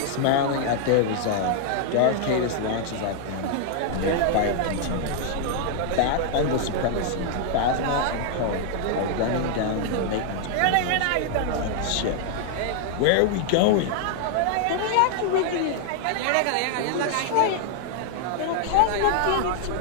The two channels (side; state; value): both; different; correlation 0.00